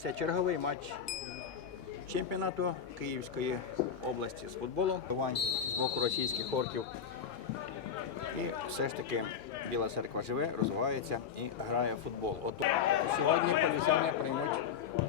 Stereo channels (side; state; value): right; quieter; 7.4 dB